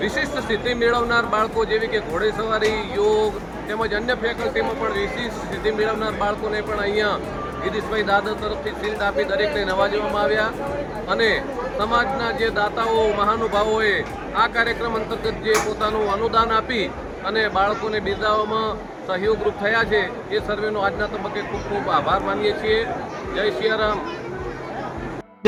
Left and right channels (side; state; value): both; identical; correlation 1.00